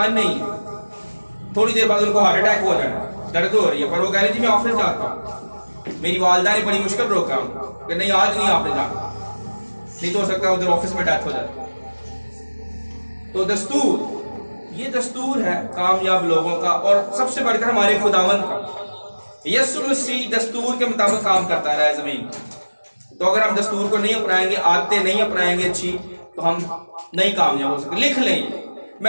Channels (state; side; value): inverted; both; correlation -1.00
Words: نہیں ہے، تھوڑی دیر بعد ان کو ہارٹ اٹیک ہو جانا، درد ہو رہی ہے، پر وہ کہہ رہے جی میں آفس جاتا ہوں۔ میری والدہ نے بڑی مشکل روکا کہ نہیں آج نہیں آپ نے جانا، نہیں تو ہو سکتا ہے ادھر آفس میں ڈیتھ ہو جاتی۔ تو دستور، یہ دستور ہے کامیاب لوگوں کا، اور سب سے بڑھ کر ہمارے خداوند کا۔ یسوع مسیح دستور کے مطابق کام کرتا رہا ہے زمین۔ تو اگر ہم دستور کو نہیں اپنائیں گے، عادتیں نہیں اپنائیں گے اچھی، تو ہم نہیں کامیاب ہو سکتے۔ لکھ لیں،